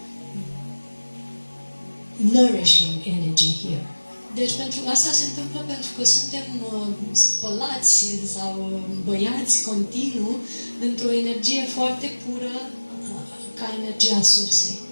nourishing energy here. Deci pentru asta se întâmplă pentru că suntem spălați sau băiați continuu într-o energie foarte pură ca energia sursei.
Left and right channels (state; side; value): inverted; both; correlation -1.00